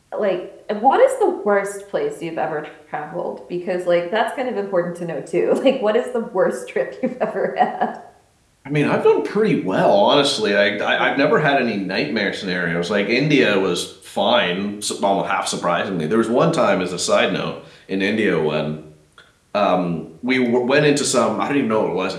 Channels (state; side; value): identical; both; correlation 1.00